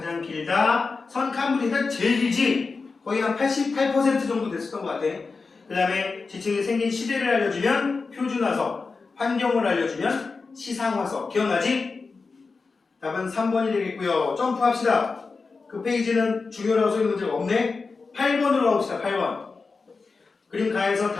길다. 선캄브리아가 제일 길지? 거의 한 88% 정도 됐었던 것 같아. 그 다음에 지층이 생긴 시대를 알려주면 표준화석, 환경을 알려주면 시상화석. 기억나지? 답은 3번이 되겠고요. 점프합시다. 그 페이지는 중요라고 써있는 문제가 없네. 8번으로 가봅시다. 8번. 그림 가에서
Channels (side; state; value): right; quieter; 4.4 dB